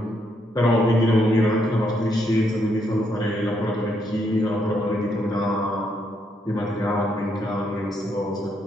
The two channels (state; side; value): normal; both; correlation 0.76